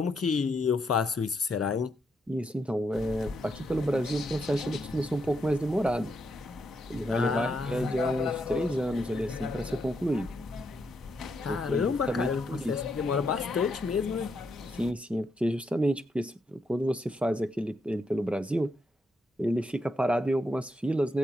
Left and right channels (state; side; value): normal; both; correlation 0.79